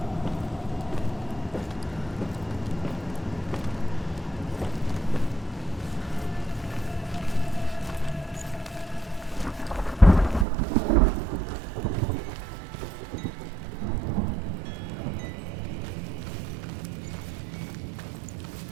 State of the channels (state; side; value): drops out; left; at 10.5 s